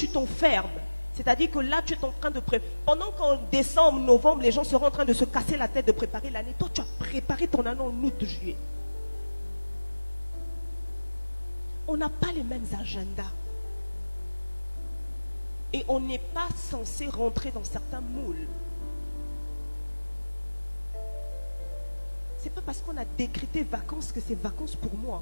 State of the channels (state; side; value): inverted; both; correlation -1.00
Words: t'enfermes. C'est-à-dire que là, tu es en train de préparer. Pendant qu'en décembre, novembre, les gens seront en train de se casser la tête de préparer l'année. Toi, tu as préparé ton année en août, juillet. On n'a pas les mêmes agendas. Et on n'est pas censé rentrer dans certains moules. Ce n'est pas parce qu'on a décrété vacances que c'est vacances pour